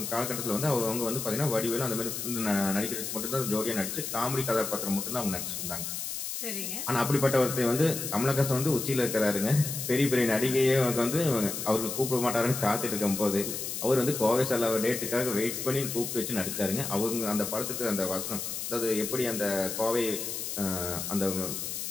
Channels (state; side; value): noise; left; hiss, 5 dB below the sound